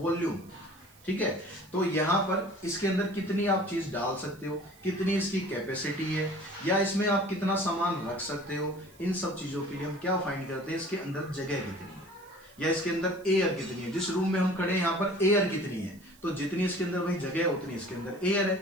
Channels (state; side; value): noise; right; hiss, 27 dB below the sound